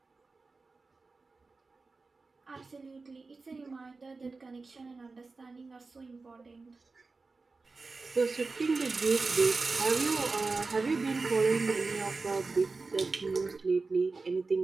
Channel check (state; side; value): quieter; left; 3.9 dB